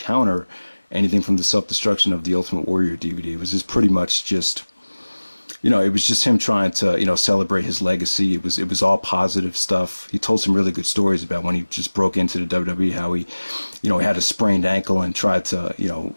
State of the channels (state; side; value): inverted; both; correlation -1.00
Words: anything from the Self-Destruction of the Ultimate Warrior DVD. It was just pretty much just, it was just him trying to, celebrate his legacy. It was all positive stuff. He told some really good stories about when he just broke into the WWE, how he, he had a sprained ankle and tried to,